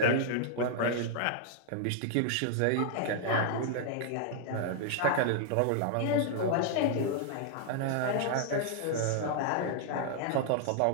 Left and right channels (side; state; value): both; different; correlation -0.01